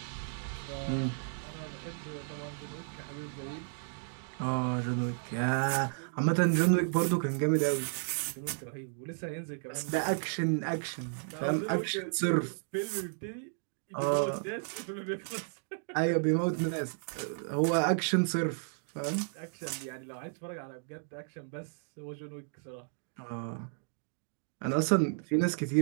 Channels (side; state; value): left; silent; digital silence